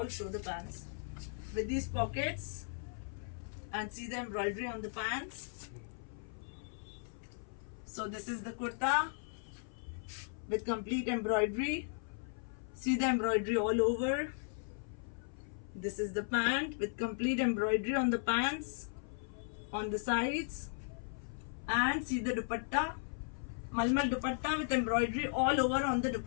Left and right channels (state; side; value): silent; right; 53 dB below the other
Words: show the pants with these pockets, and see the embroidery on the pants. So this is the kurta with complete embroidery. See the embroidery all over. This is the pant with complete embroidery on the pants, on the sides, and see the dupatta, malmal dupatta with embroidery all over on the